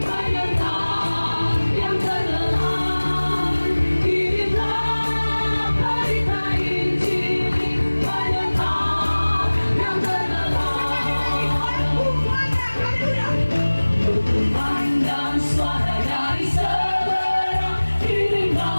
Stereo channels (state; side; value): inverted; both; correlation -1.00